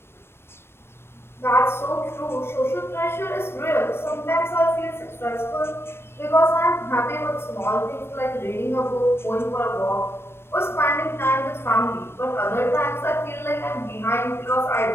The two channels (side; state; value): right; late; 0.12 ms